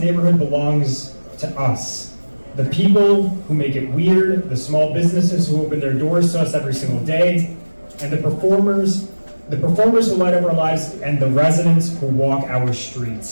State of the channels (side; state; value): both; inverted; correlation -1.00